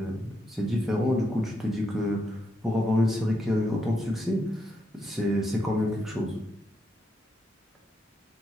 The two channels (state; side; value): normal; both; correlation 0.81